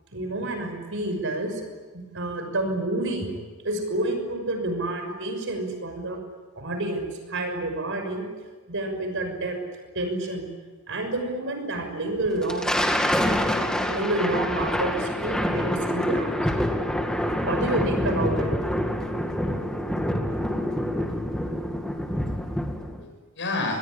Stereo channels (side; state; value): both; normal; correlation 0.46